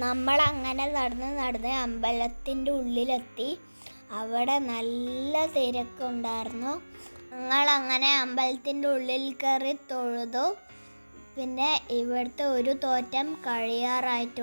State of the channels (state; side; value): inverted; both; correlation -1.00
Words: നമ്മൾ അങ്ങനെ നടന്ന് അമ്പലത്തിൻ്റെ ഉള്ളിലെത്തി. അവിടെ നല്ല തിരക്കുണ്ടായിരുന്നു. ഞങ്ങളങ്ങനെ അമ്പലത്തിൻ്റെ ഉള്ളിൽ കയറി തൊഴുതു. പിന്നെ ഇവിടുത്തെ ഒരു തോറ്റം